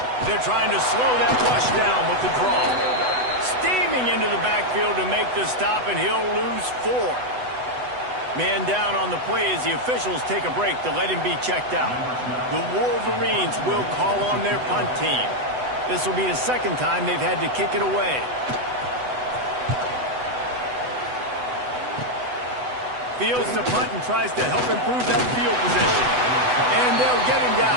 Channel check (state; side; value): late; left; 8.0 ms